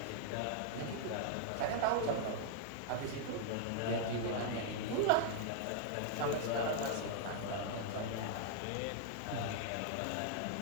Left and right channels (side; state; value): both; different; correlation 0.00